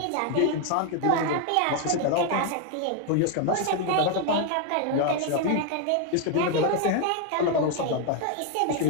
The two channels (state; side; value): different; both; correlation 0.01